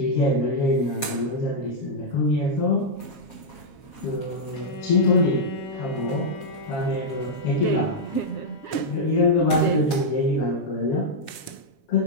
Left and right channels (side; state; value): right; late; 7.4 ms